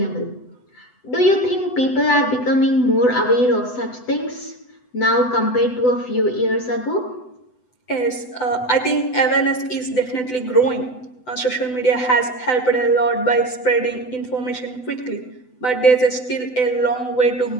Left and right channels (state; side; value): late; right; 8.0 ms